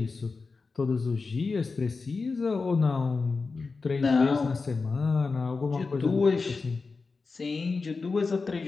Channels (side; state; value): right; quieter; 4.3 dB